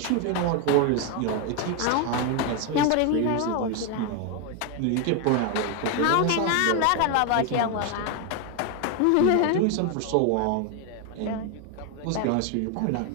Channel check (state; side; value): different; both; correlation 0.01